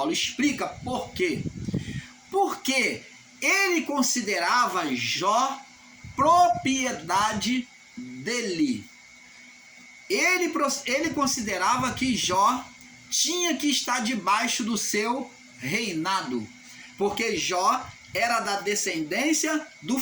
explica por quê. Porque ele considerava Jó propriedade dele. Ele considerava que Jó tinha que estar debaixo do seu reinado, porque Jó era da descendência do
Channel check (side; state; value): both; identical; correlation 1.00